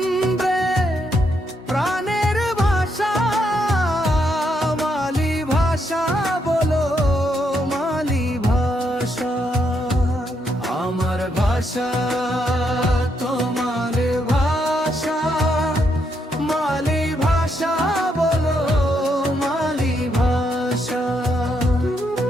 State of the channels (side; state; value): both; normal; correlation 0.77